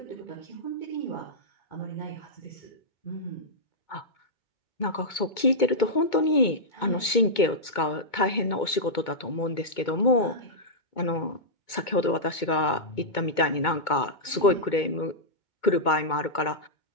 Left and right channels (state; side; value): late; right; 2.2 ms